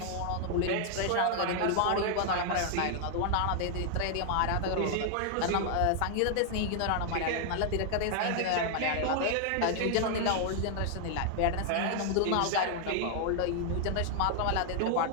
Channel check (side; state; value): both; different; correlation 0.00